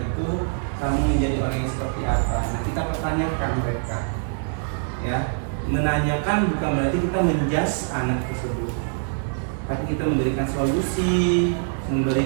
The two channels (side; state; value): left; silent; digital silence